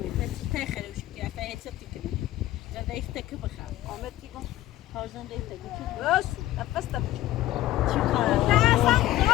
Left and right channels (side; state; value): right; quieter; 15.0 dB